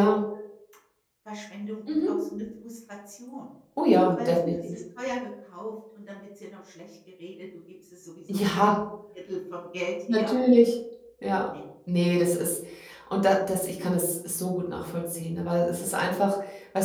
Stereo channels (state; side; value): identical; both; correlation 1.00